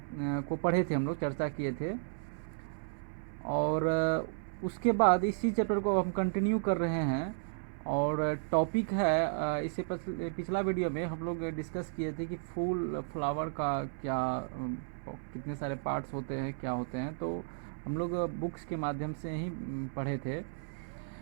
पढ़े थे, हम लोग चर्चा किए थे। और उसके बाद इसी चैप्टर को हम कंटिन्यू कर रहे हैं और टॉपिक है इससे पिछला वीडियो में हम लोग डिस्कस किए थे कि फूल फ्लावर का क्या कितने सारे पार्ट्स होते हैं, क्या होते हैं, तो हम लोग बुक्स के माध्यम से ही पढ़े थे।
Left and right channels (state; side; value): silent; left; 55 dB below the other